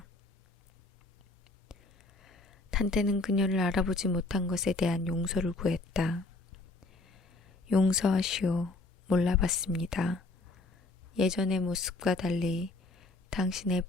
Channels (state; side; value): quieter; right; 3.1 dB